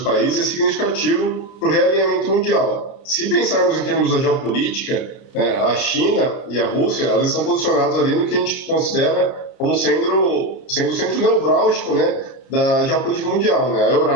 é significativo para o realinhamento mundial. Se pensarmos em termos da geopolítica, a China e a Rússia, elas estão posicionadas ali no que a gente considera como sendo o centro neurálgico, da geopolítica mundial. A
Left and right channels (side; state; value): right; late; 30 ms